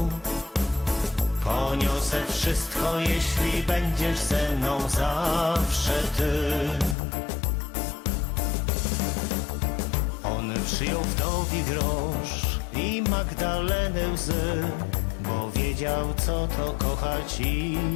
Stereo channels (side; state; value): right; drops out; at 7.0 s